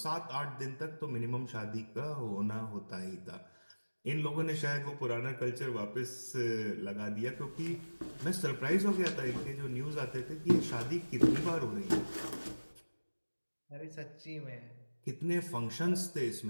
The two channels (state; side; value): inverted; both; correlation -1.00